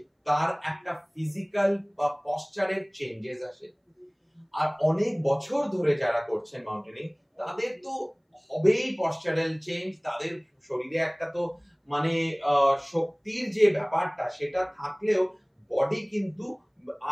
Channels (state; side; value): identical; both; correlation 1.00